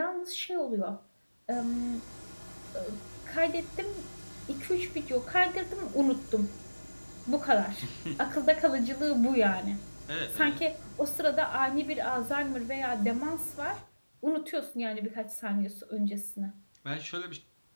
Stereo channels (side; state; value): both; inverted; correlation -1.00